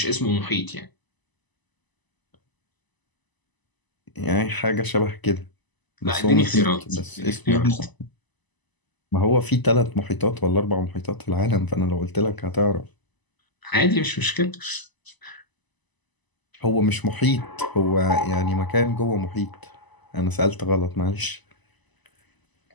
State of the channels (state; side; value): late; right; 1.0 ms